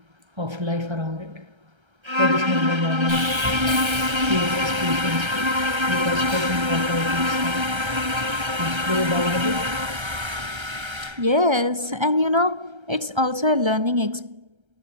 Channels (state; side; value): late; left; 1.3 ms